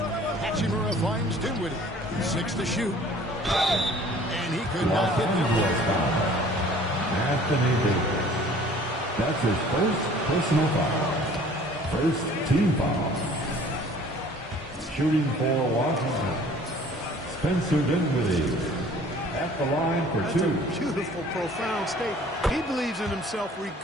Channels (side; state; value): both; normal; correlation 0.51